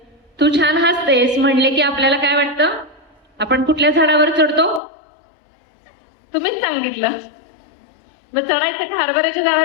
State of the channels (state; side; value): drops out; right; at 4.8 s